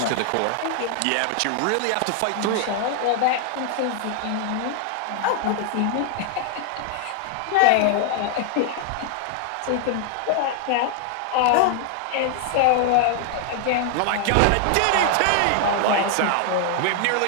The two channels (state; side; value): different; both; correlation 0.00